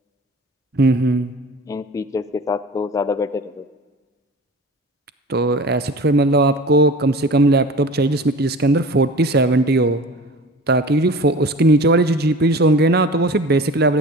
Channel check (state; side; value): normal; both; correlation 0.39